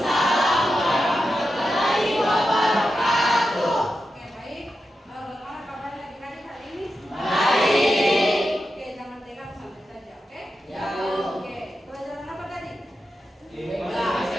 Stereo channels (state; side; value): normal; both; correlation 0.89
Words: warahmatullahi wabarakatuh. Oke, baik. Bagaimana kabarnya adik-adik hari ini? Baik. Oke, jangan tegang, santai saja, oke? Ya. Oke, pelajaran apa tadi? Bahasa